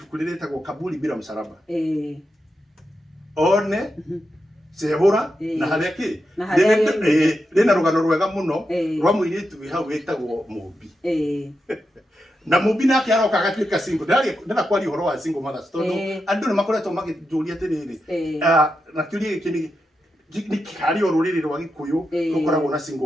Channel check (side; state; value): both; normal; correlation 0.87